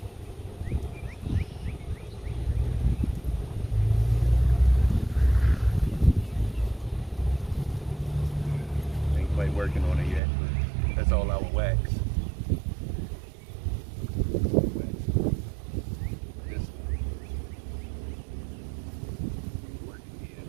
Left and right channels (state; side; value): drops out; left; at 10.2 s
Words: Ain't quite working on it yet, but that's all our wax. This one. Working here.